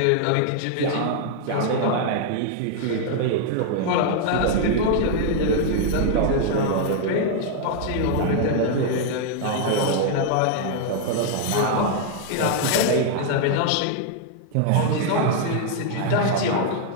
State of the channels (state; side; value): different; both; correlation 0.00